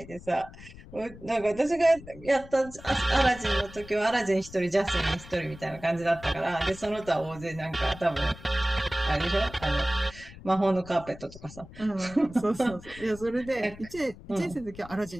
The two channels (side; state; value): left; noise; rumble, 18 dB below the sound